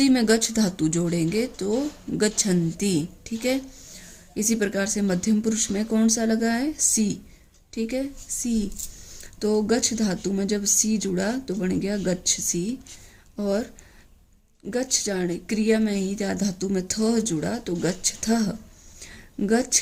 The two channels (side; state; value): both; identical; correlation 1.00